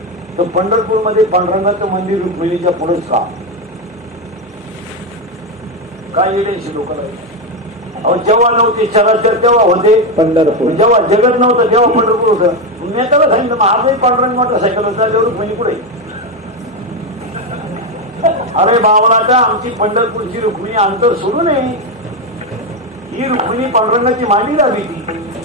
तर पंढरपूर मध्ये पांडुरंगाचं मंदिर रुक्मिणीच्या पुढेच का काय येण्याची लोक अहो जेव्हा नव्हते चराचर तेव्हा होते पंढरपूर. जेव्हा जगत नव्हतं तेव्हा पंढरपूर होतं. मी त्याला सांगितलं मग आजही पांडुरंग मोटरसायकल होता तेवढं रुक्मिणी पुढे. अरे बावळाटा आमची पंढरपूरची रुक्मिणी अंतर सोडू नये. ही रुक्मिणी पांडुरंगाची मांडी लावी ती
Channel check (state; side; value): normal; both; correlation 0.09